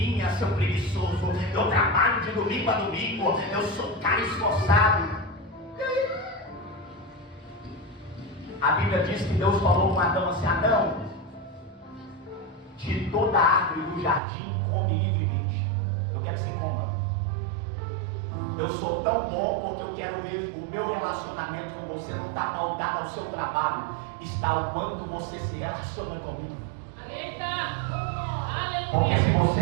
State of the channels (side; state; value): left; drops out; at 14.2 s